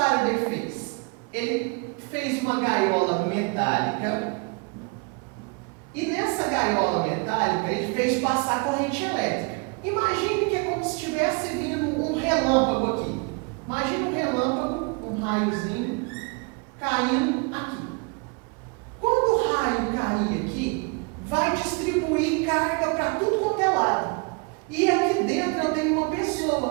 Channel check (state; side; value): quieter; left; 31.8 dB